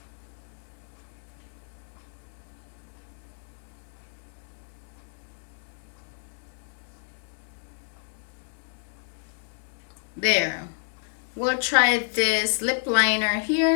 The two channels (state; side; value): silent; right; digital silence